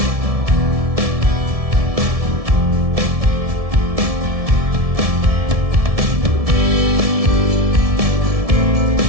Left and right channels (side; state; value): left; late; 1.7 ms